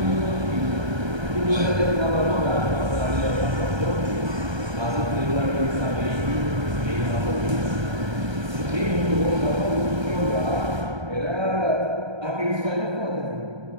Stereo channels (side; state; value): left; late; 1.3 ms